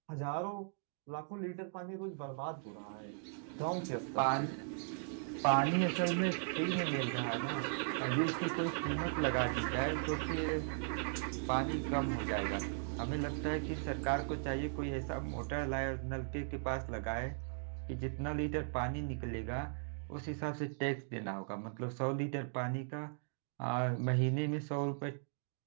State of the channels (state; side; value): silent; left; digital silence